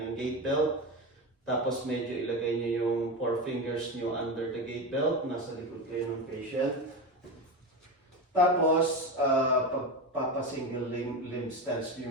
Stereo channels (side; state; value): both; normal; correlation 0.20